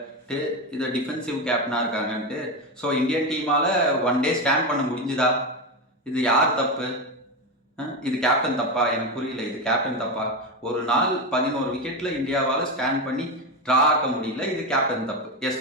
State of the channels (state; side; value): normal; both; correlation 0.15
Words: இது டிஃபென்சிவ் கேப்டனாக இருக்காங்கன்ட்டு. ஸோ இந்தியன் டீமால் 1 டே ஸ்டாண்ட் பண்ண முடிஞ்சுதா? இது யார் தப்பு? இது கேப்டன் தப்பா? எனக்கு புரியல, இது கேப்டன் தப்பா? ஒரு நாள் 11 விக்கெட்டில் இந்தியாவால் ஸ்டாண்ட் பண்ணி ட்ரா ஆக்க முடியல, இது கேப்டன் தப்பு. எஸ்